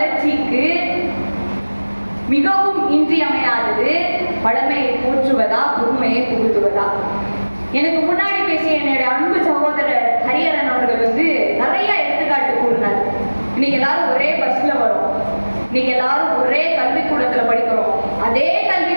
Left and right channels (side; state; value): both; inverted; correlation -1.00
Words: மிகவும் இன்றியமையாதது பழமையை போற்றுவதா, புதுமையை புகுத்துவதா? எனக்கு முன்னாடி பேசிய என்னுடைய அன்பு சகோதரர் ஹரிஹரன் அவர்கள் நிறைய எடுத்துக்காட்டு கூறினார். இன்னைக்கு எல்லாரும் ஒரே பஸ்ல வரும், இன்னைக்கு எல்லாரும் ஒரே கல்விக்கூடத்துல படிக்கிறோம். அதே